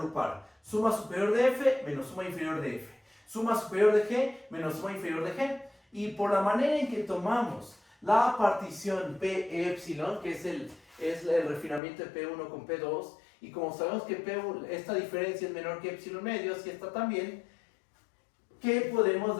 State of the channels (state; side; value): drops out; right; at 11.8 s